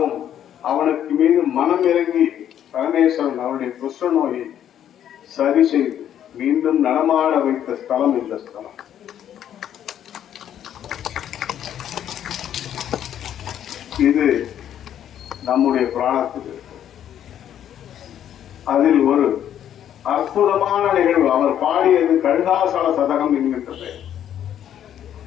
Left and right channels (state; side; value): quieter; right; 10.3 dB